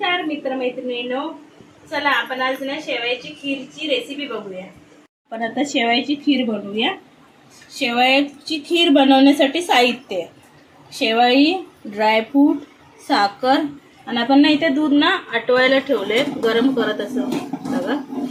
मित्रमैत्रिणींनो, चला आपण आज ना शेवयाची खीरची रेसिपी बघूया। आपण आता शेवयाची खीर बनवूया। शेवयाची खीर बनवण्यासाठी साहित्य: शेवई, ड्रायफ्रूट, साखर आणि आपण ना इथे दूध ना आटवायला ठेवले, गरम करत असं बघा।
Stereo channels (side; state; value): both; identical; correlation 1.00